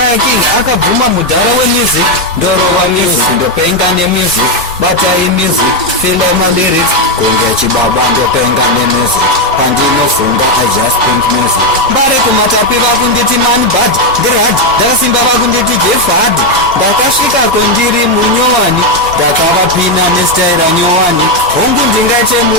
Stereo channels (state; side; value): normal; both; correlation 0.05